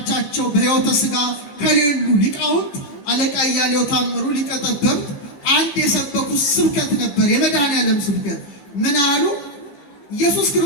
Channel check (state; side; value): late; right; 15 ms